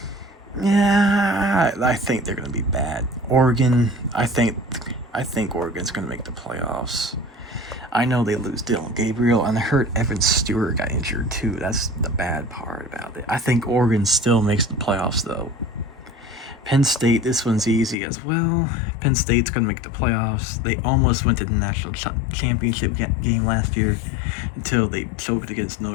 Yeah, I think they're going to be bad. Oregon, I think Oregon's going to make the playoffs. I know they lose Dylan Gabriel, and I heard Evan Stewart got injured too. That's the bad part about it. I think Oregon still makes the playoffs, though. Penn State, this one's easy as well. Penn State's going to make the playoffs. They almost went to the national championship game last year until they choked against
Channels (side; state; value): right; drops out; at 17.9 s